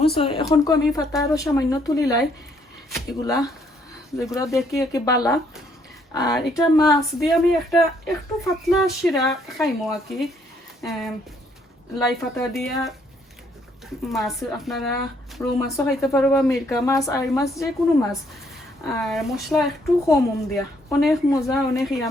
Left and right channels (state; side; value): normal; both; correlation 0.68